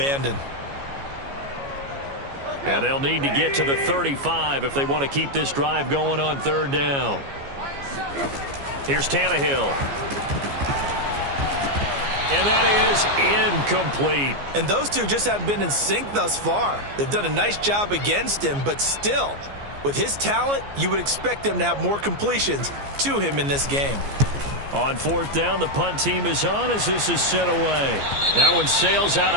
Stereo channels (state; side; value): late; left; 14 ms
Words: And they'll need to get to the 35 if they want to keep this drive going on 3rd down. Here's Tannehill. And that is incomplete. And those two just haven't been in sync thus far. They've done a nice job against him, but still, with his talent, you would expect them to have more completions to him in this game. On 4th down, the punt team is on as this is sent away. That one sails out